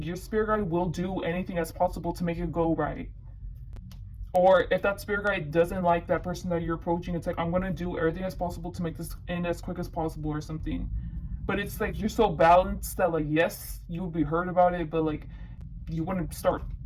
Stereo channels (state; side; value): identical; both; correlation 1.00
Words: your spirit guide will do anything as possible to make it go right. Or if that spirit guide doesn't like that person that you're approaching, it's like, I'm gonna do everything as possible to make this end as quick as possible or something. But it's like you're so balanced that like, yes, you would be hurt about it, but like you wouldn't start